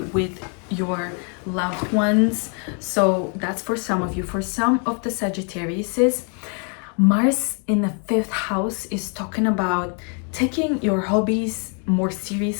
with your loved ones. So that's for some of you. For some of the Sagittariuses, Mars in the 5th house is talking about taking your hobbies more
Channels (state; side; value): quieter; right; 39.5 dB